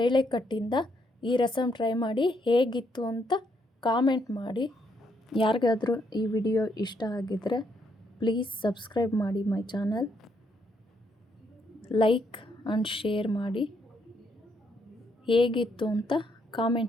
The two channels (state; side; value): normal; both; correlation 0.74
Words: ಈ ರಸಮ್ ಟ್ರೈ ಮಾಡಿ ಹೇಗಿತ್ತು ಅಂತ ಕಾಮೆಂಟ್ ಮಾಡಿ. ಯಾರಿಗಾದರೂ ಈ ವಿಡಿಯೋ ಇಷ್ಟ ಆಗಿದ್ದರೆ ಪ್ಲೀಸ್ ಸಬ್ಸ್ಕ್ರೈಬ್ ಮಾಡಿ my channel, like and share ಮಾಡಿ. ಹೇಗಿತ್ತು ಅಂತ